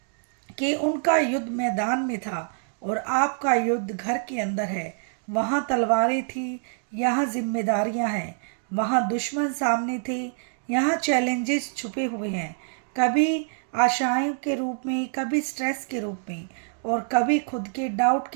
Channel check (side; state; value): left; silent; digital silence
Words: कि उनका युद्ध मैदान में था और आपका युद्ध घर के अंदर है। वहाँ तलवारें थी, यहाँ जिम्मेदारियाँ हैं। वहाँ दुश्मन सामने थे, यहाँ चैलेंजेस छुपे हुए हैं। कभी आशाओं के रूप में, कभी स्ट्रेस के रूप में और कभी खुद के डाउट